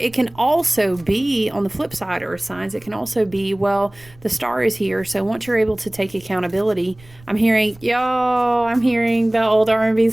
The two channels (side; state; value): right; noise; rumble, 25 dB below the sound